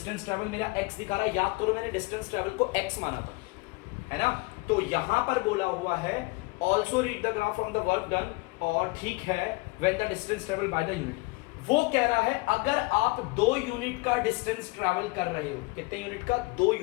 ट्रैवल मेरा x दिखा रहा है, याद करो मैंने डिस्टेंस ट्रैवल को x माना था, है ना। तो यहां पर बोला हुआ है also read the graph from the work done, और ठीक है when the distance travel by the unit. वो कह रहा है अगर आप 2 यूनिट का डिस्टेंस ट्रैवल कर रहे हो, कितने यूनिट का, 2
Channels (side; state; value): right; quieter; 25.2 dB